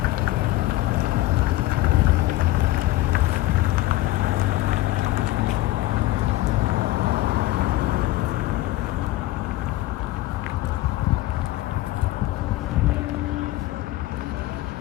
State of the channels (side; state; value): right; quieter; 17.1 dB